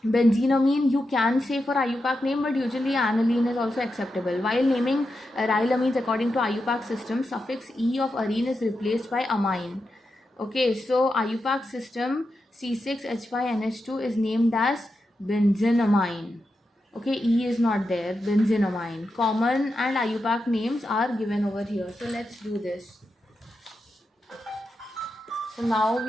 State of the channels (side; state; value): both; normal; correlation 0.88